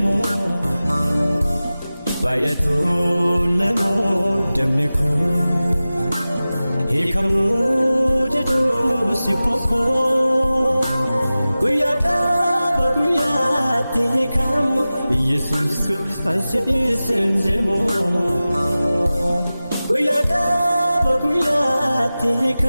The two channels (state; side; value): inverted; both; correlation -0.96